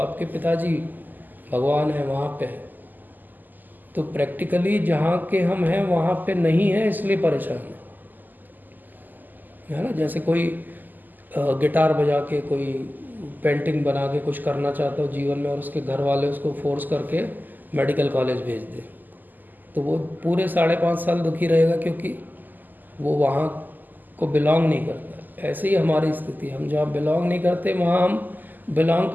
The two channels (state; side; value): late; left; 0.086 ms